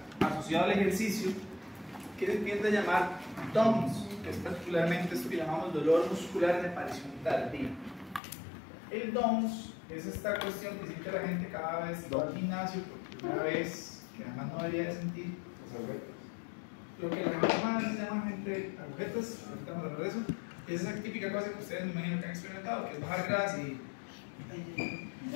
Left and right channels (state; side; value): drops out; right; at 8.2 s